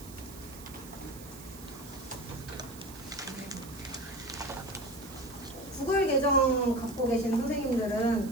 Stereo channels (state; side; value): noise; right; hiss, 17 dB below the sound